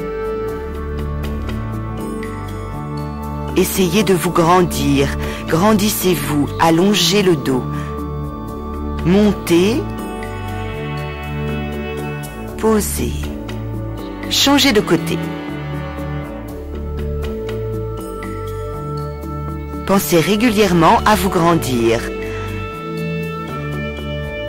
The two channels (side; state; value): both; identical; correlation 1.00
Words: Essayez de vous grandir. Grandissez-vous, allongez le dos. Montez. Posez. Changez de côté. Pensez régulièrement à vous grandir.